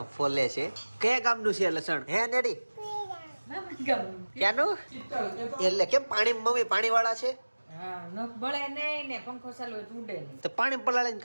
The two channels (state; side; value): inverted; both; correlation -1.00